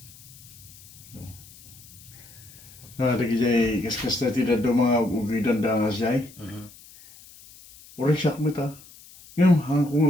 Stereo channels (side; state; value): left; noise; hiss, 22 dB below the sound